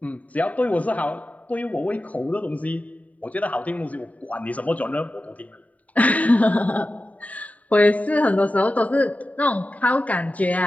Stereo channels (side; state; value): right; late; 0.070 ms